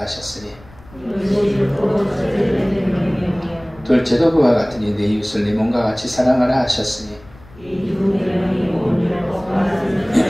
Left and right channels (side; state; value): left; noise; rumble, 23 dB below the sound